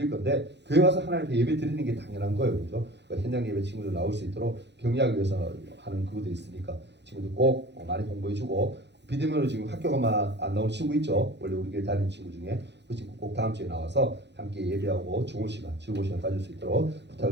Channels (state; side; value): late; left; 0.50 ms